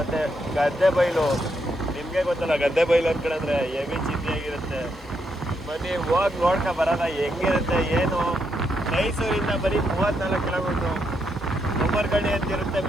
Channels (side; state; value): both; normal; correlation 0.79